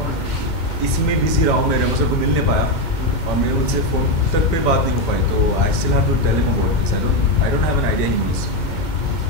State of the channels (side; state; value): right; late; 2.1 ms